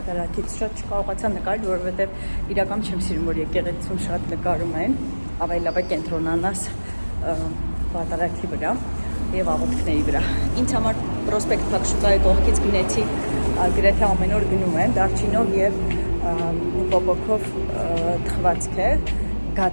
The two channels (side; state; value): both; inverted; correlation -1.00